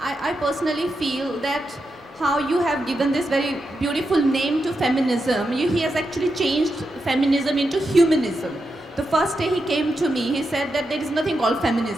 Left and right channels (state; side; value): normal; both; correlation 0.87